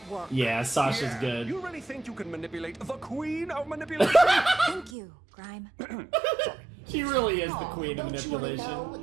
work. Yeah, Sasha's good. You really think you can manipulate the queen of manipulation? Thank you, Grime. She really is the queen of Don't you want to know manipulation.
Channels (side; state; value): left; drops out; at 4.9 s